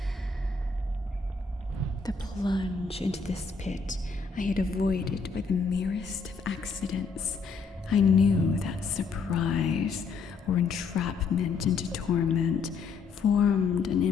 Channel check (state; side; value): quieter; right; 4.8 dB